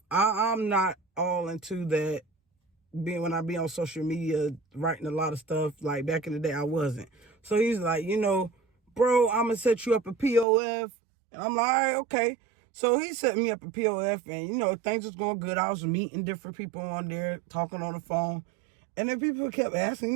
I'm not all into that. When I be on social media writing a lot of stuff, like back in the day, I wasn't. So he's like, bro, I'm gonna set you up a POF. And I'm like, all right, okay. So he set me up a POF, and things was going good. I was meeting different people on there, talking on the phone. And then people kept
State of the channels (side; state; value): left; drops out; at 10.5 s